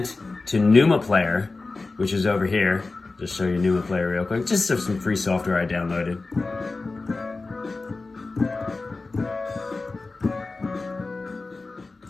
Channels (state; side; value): quieter; right; 3.6 dB